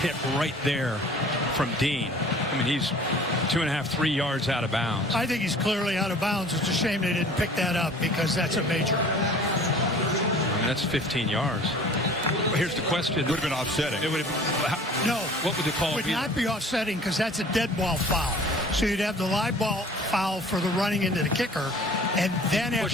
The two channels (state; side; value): normal; both; correlation 0.47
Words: right there from Dean. I mean, he's 2.5, 3 yards out of bounds. I think he's clearly out of bounds. It's a shame they didn't pick that up because that's a major. I mean, that's 15 yards. Here's the question. It would have been offsetting. It would have. No. What would the call be? It would not be offsetting because that's a dead ball foul. So you'd have the live ball foul for the running into the kicker, and then